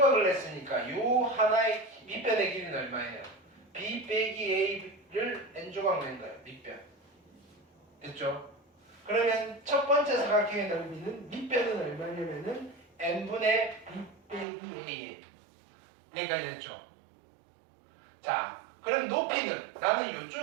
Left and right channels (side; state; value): left; drops out; at 14.5 s